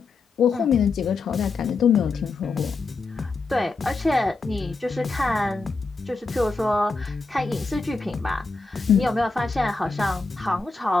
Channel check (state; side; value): quieter; right; 4.0 dB